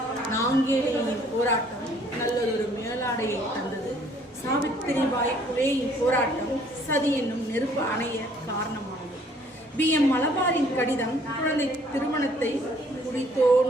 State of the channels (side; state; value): both; normal; correlation 0.60